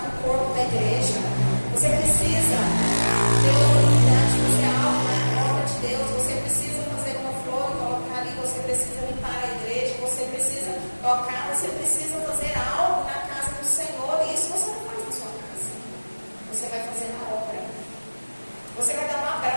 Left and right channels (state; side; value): inverted; both; correlation -1.00